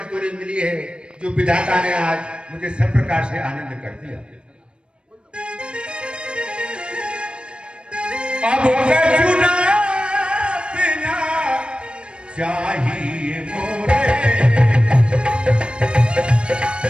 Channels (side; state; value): left; late; 0.056 ms